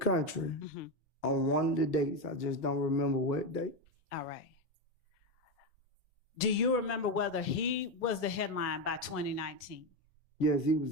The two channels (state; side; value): normal; both; correlation 0.12